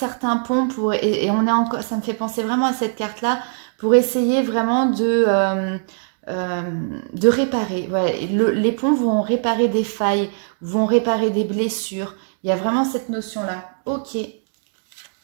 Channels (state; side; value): silent; left; digital silence